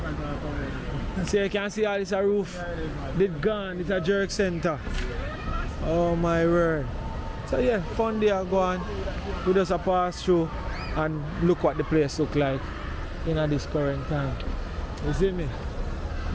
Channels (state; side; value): identical; both; correlation 1.00